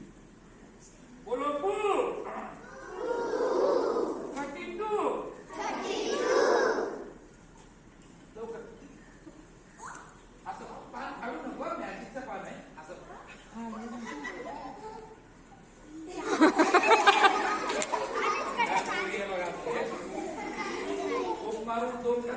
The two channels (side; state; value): both; identical; correlation 1.00